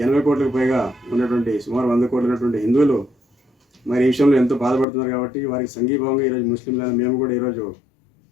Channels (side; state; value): right; drops out; at 4.9 s